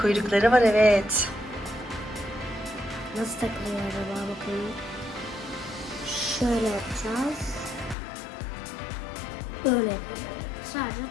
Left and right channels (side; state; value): right; drops out; at 8.0 s